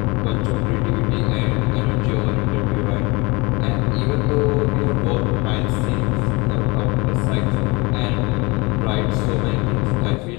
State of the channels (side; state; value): right; quieter; 25.8 dB